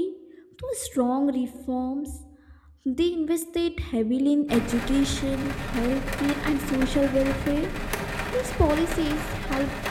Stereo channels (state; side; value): identical; both; correlation 1.00